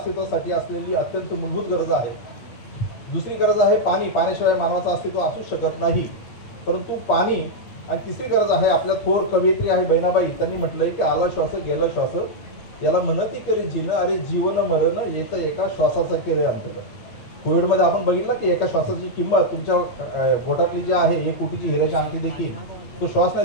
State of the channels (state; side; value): late; right; 8.6 ms